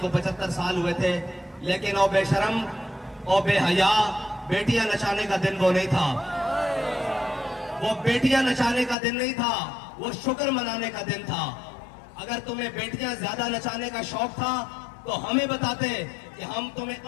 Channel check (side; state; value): right; drops out; at 9.0 s